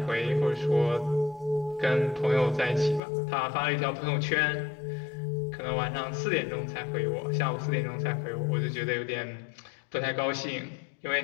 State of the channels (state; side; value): drops out; right; at 3.0 s